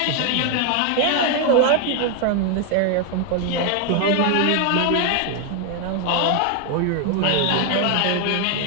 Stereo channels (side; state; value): both; different; correlation 0.01